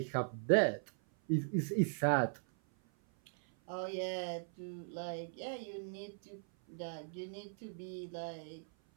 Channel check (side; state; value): left; silent; 52 dB below the other